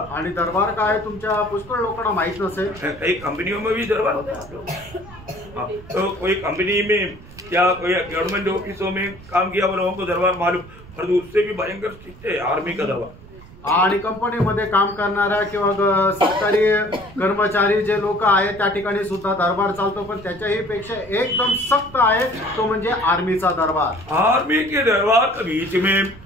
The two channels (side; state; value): right; noise; rumble, 19 dB below the sound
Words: आणि दरबार काय तुमच्या पुष्कळ लोकांना माहित नसेल। कई कंपनियों में भी दरबार होता है। तो कोई कंपनी में या कोई गवर्नमेंट ऑफिसों में काम किया वो लोगों को दरबार मालूम, और उससे भी भयंकर स्ट्रिक्ट है आर्मी का दरबार। आणि कंपनीमध्ये काम करणाऱ्या किंवा सरकारी कर्मचारी जे लोक आहेत त्या ठिकाणी सुद्धा दरबार चालतो, पण त्याच्याही पेक्षा एकदम सक्त आहे तो म्हणजे आर्मीचा दरबार। आर्मी के दरबार के बीच में